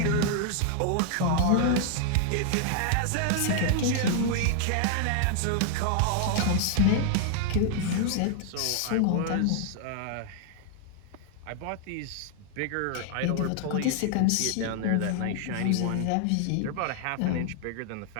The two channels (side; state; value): both; different; correlation 0.00